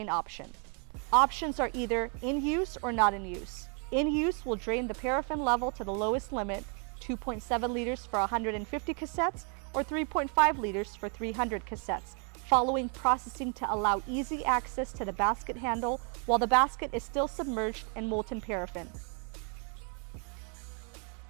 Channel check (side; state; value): left; quieter; 38.9 dB